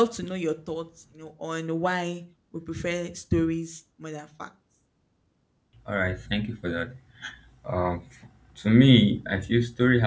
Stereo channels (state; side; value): identical; both; correlation 1.00